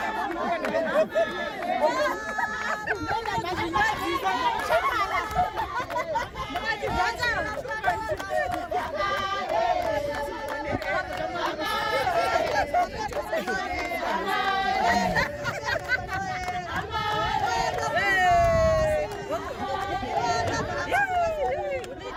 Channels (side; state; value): both; identical; correlation 1.00